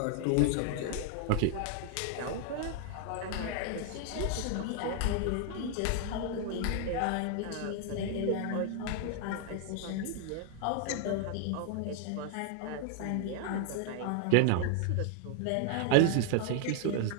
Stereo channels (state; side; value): different; both; correlation 0.00